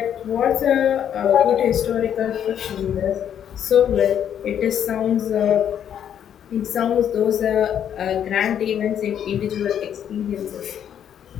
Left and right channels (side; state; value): right; quieter; 9.3 dB